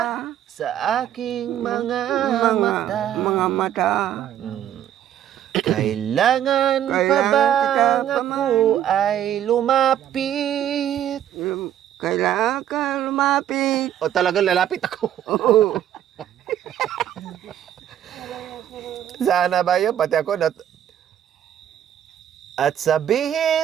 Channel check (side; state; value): left; quieter; 10.8 dB